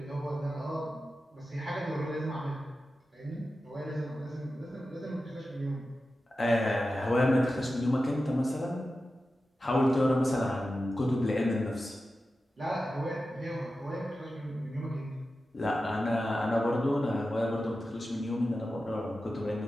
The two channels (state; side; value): normal; both; correlation 0.93